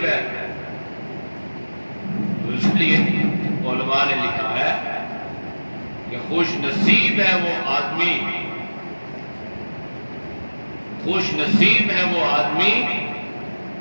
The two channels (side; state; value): both; inverted; correlation -1.00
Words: ہے۔ تو اس لیے علماء نے لکھا ہے کہ خوش نصیب ہے وہ آدمی، خوش نصیب ہے وہ آدمی